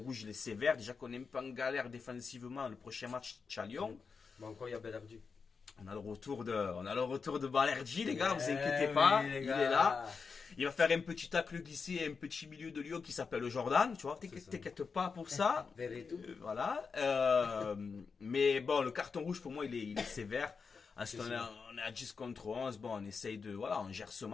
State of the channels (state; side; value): quieter; right; 5.2 dB